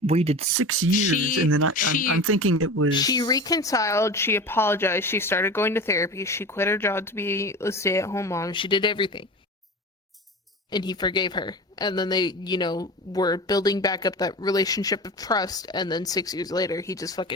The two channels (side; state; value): both; normal; correlation 0.31